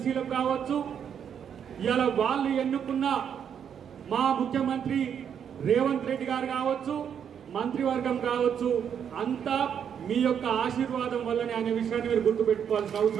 కావచ్చు, ఇలా వాళ్ళు ఎన్నుకున్న మా ముఖ్యమంత్రి రేవంత్ రెడ్డి గారు కావచ్చు, మంత్రివర్గం కావచ్చు, అంతా మీ యొక్క ఆశీర్వాదం వల్లనే అనే విషయాన్ని మీరు గుర్తుపెట్టుకోవాల్సిన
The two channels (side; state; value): left; quieter; 8.2 dB